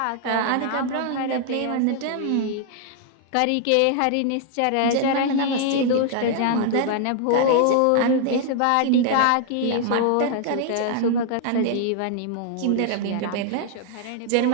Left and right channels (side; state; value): both; different; correlation 0.00